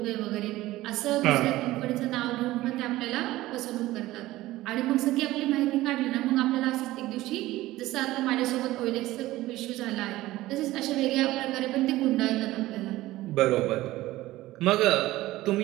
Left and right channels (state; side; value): quieter; left; 17.0 dB